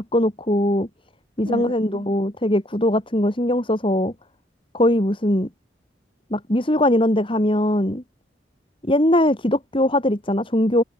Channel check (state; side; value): normal; both; correlation 0.65